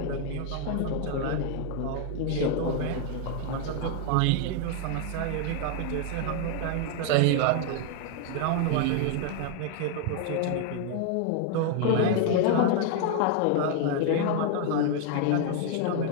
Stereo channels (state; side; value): different; both; correlation 0.00